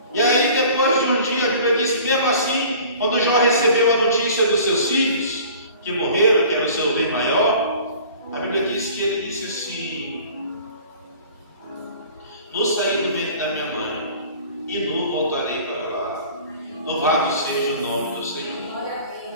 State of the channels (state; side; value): inverted; both; correlation -0.46